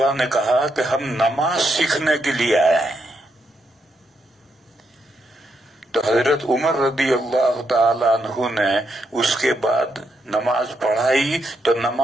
نے کہا کہ ہم نماز سیکھنے کے لیے آئے ہیں. تو حضرت عمر رضی اللہ تعالی عنہ نے اس کے بعد نماز پڑھائی تو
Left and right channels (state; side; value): normal; both; correlation 0.80